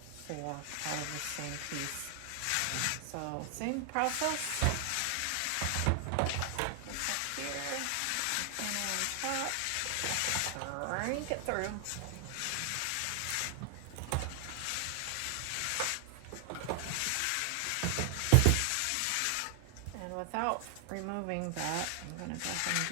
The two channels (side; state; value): both; different; correlation 0.00